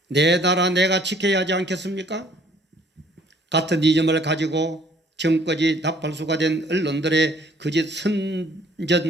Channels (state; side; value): normal; both; correlation 0.59